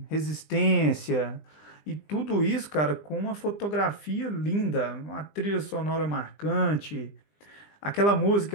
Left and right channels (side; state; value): right; late; 20 ms